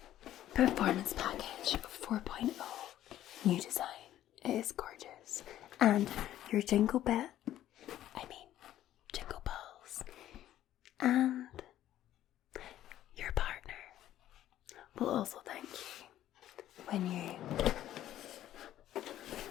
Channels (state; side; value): quieter; right; 12.7 dB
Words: performance package 4.0. New design. It is gorgeous. And your jingle balls, and your partner will also thank you when you